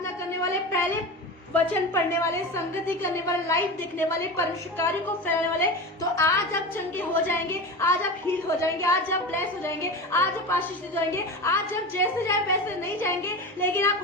करने वाले, पहले वचन पढ़ने वाले, संगति करने वाले, लाइव देखने वाले, परमेश्वर कार्य को फैलाने वाले, तो आज आप चंगे हो जाएंगे, आज आप हील हो जाएंगे, आज आप ब्लेस हो जाएंगे, आज आप आशीष हो जाएंगे। आज आप जैसे जाए वैसे नहीं जाएंगे, लेकिन आप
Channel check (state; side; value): normal; both; correlation 0.27